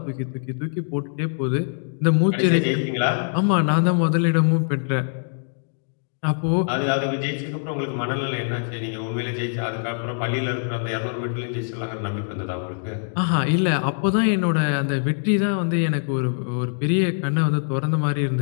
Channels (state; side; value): silent; right; digital silence